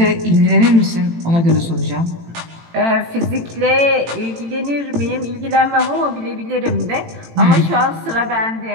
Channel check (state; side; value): late; left; 18 ms